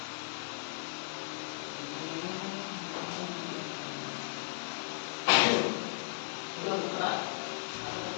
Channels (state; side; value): silent; right; digital silence